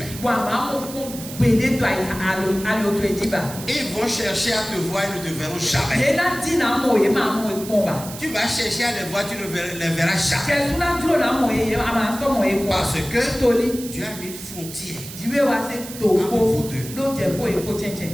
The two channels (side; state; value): right; noise; hiss, 12 dB below the sound